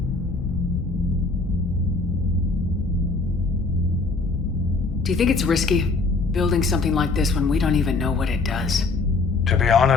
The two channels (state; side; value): quieter; right; 3.8 dB